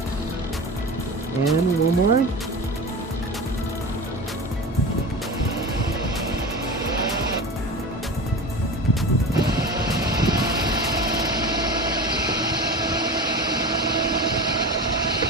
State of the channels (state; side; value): normal; both; correlation 0.30